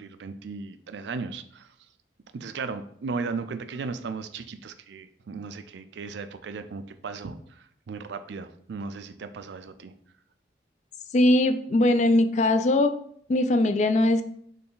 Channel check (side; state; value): both; normal; correlation 0.61